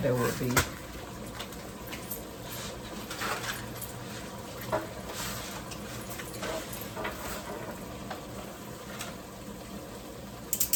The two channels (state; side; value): identical; both; correlation 1.00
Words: there would be.